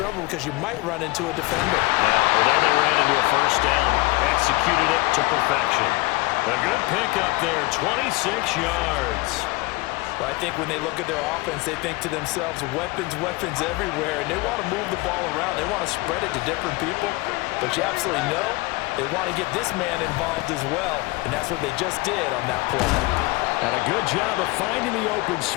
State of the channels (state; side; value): quieter; right; 22.7 dB